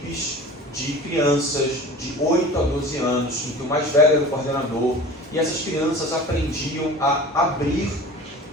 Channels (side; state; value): both; normal; correlation 0.39